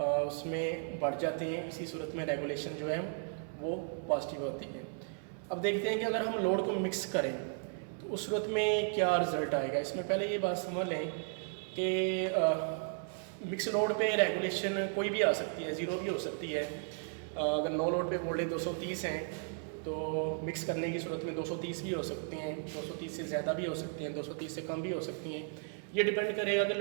बढ़ जाती हैं। इसी सूरत में रेगुलेशन जो है वो पॉजिटिव होती है। अब देखते हैं कि अगर हम लोड को मिक्स करें तो उस सूरत में क्या रिज़ल्ट आएगा। इसमें पहले ये बात समझ लें कि मिक्स लोड पे रेगुलेशन कोई भी आ सकती है, ज़ीरो भी हो सकती है। अगर नो लोड पे वोल्टेज 230 हैं तो मिक्स करने की सूरत में 230 भी हो सकते हैं, 230 से ज़्यादा भी हो सकते हैं, 230 से कम भी हो सकती हैं। ये डिपेंड करेगा कि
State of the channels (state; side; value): silent; left; 54 dB below the other